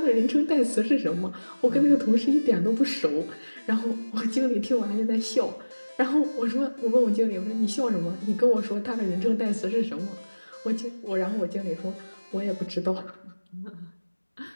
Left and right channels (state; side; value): inverted; both; correlation -1.00